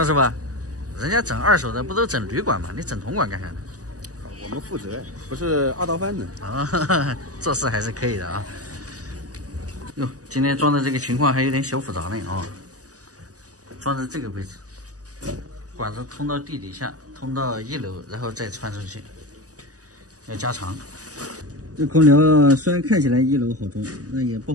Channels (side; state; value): left; late; 0.67 ms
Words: 师傅，人家整二手的不都整铝管吗？你整铜管干啥呢？我们负责，不是二道贩子啊，做事还是可以的啊。哟，今天装的这个情况还有点小复杂呢啊。装在这个位置，管子通到地底下，通到1楼，然后再穿出去，要加长。这空调虽然看起来1楼好装，那也不